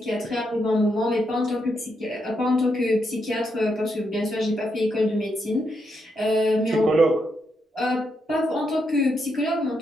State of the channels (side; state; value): both; normal; correlation 0.81